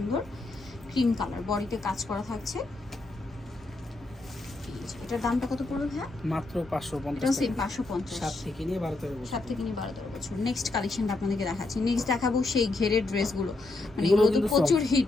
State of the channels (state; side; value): quieter; right; 3.1 dB